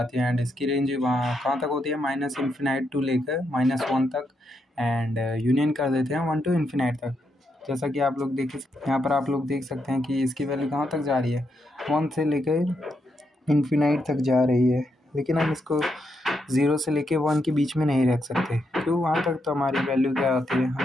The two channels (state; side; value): normal; both; correlation 0.81